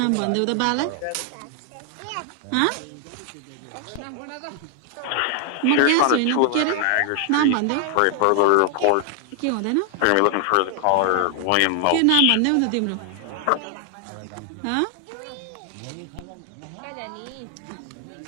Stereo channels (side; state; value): both; different; correlation 0.00